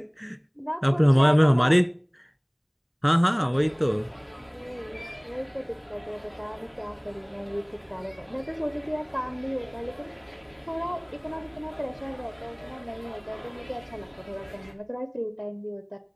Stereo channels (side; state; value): both; identical; correlation 1.00